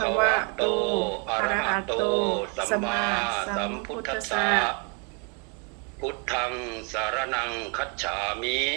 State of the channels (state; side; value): quieter; left; 30.6 dB